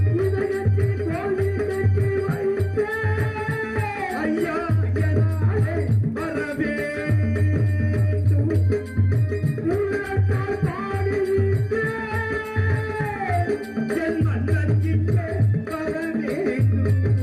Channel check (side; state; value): both; identical; correlation 1.00